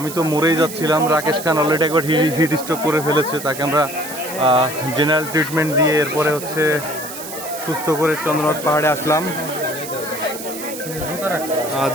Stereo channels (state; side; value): noise; right; hiss, 10 dB below the sound